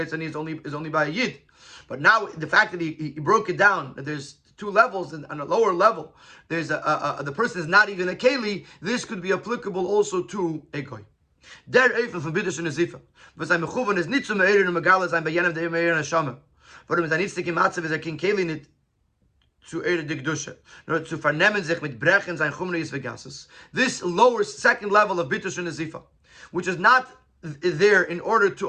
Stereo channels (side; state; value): both; identical; correlation 1.00